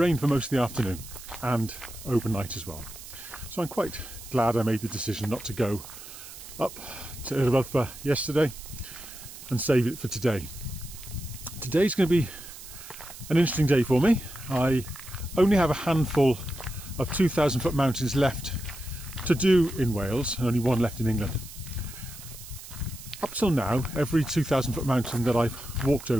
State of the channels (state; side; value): noise; right; hiss, 15 dB below the sound